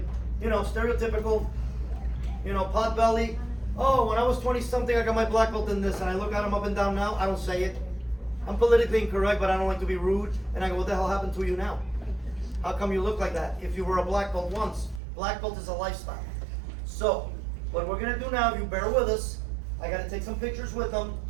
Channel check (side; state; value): left; drops out; at 15.0 s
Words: stereotypical, pot belly. Oh, when I was 20 something, I got my black belt in this, and I look at them up and down now, I don't say it. I'm politically incorrect, but I don't like to be rude. And I go, what the hell happened to you now? How come you look like that? If you were a black belt once, black belt is a lifestyle. So, what we're gonna do now, if you bear with us, I gotta take some pictures with them,